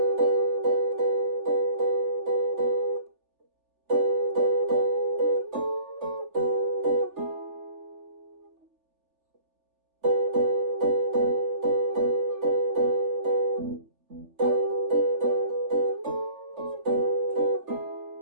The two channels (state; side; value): late; left; 3.4 ms